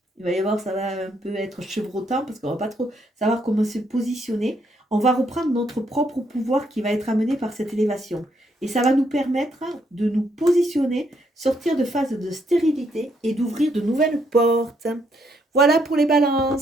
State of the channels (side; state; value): both; normal; correlation 0.74